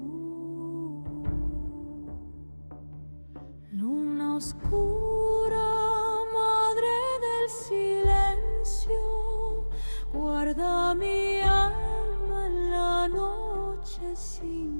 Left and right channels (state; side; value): inverted; both; correlation -1.00